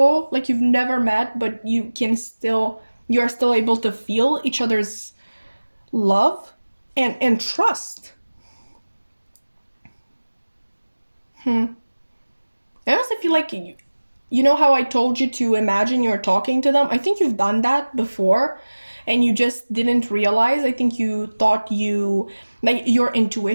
Like you've never met, but you are still able to feel each other's love and trust. I also feel like you know how I told you to imagine you're talking to them? I think you've done that before and you just didn't realize. I think you thought like your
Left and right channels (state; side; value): inverted; both; correlation -1.00